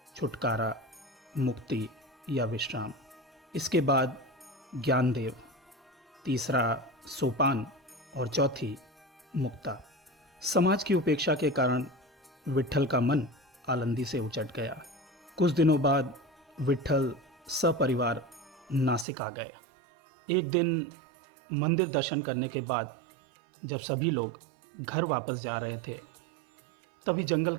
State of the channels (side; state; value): left; drops out; at 19.1 s